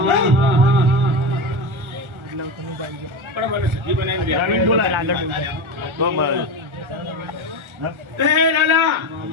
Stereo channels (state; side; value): late; left; 1.4 ms